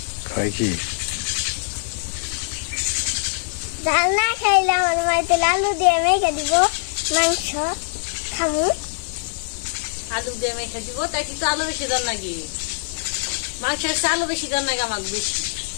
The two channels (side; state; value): right; silent; digital silence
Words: খাই কি ডাল না খাইলে আমার মাইতে আলু দিয়ে মেখে দিব মাংস খামু। আলু দিয়ে মেখে দিব, তাই কিন্তু আলু বেশি দেন নাকি? মাংসের আলু বেশি দেন নাকি? আমাকে বেশি